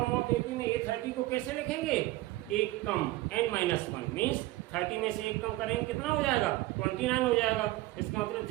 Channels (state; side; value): quieter; left; 17.8 dB